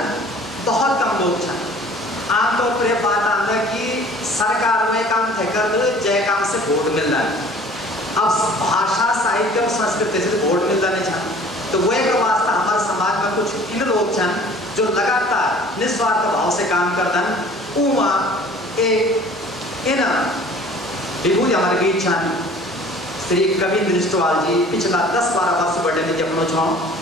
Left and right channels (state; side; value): normal; both; correlation 0.49